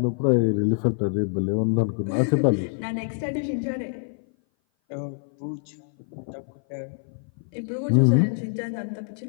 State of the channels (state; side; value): silent; right; 57 dB below the other